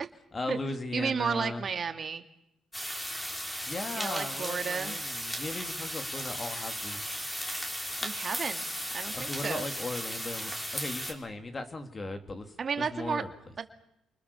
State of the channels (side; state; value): both; normal; correlation 0.88